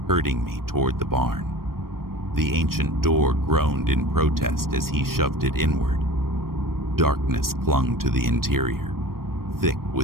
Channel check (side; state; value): left; late; 0.93 ms